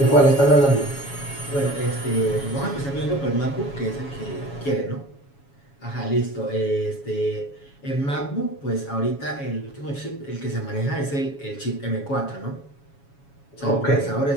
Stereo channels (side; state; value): right; late; 7.2 ms